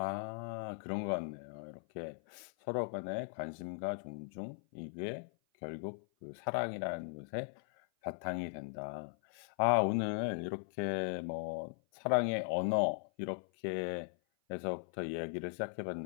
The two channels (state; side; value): silent; right; 52 dB below the other